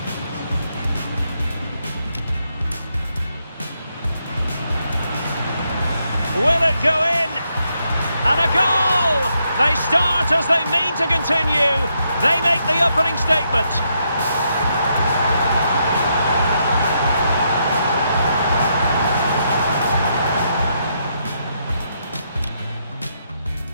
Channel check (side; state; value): both; inverted; correlation -0.79